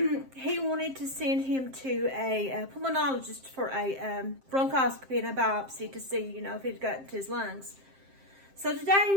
wanted to send him to a pulmonologist for a bronchoscopy and a biopsy to see, if it got into his lungs. So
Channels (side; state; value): left; late; 7.6 ms